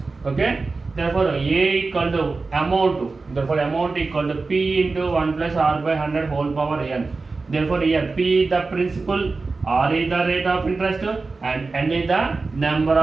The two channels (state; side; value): quieter; left; 3.9 dB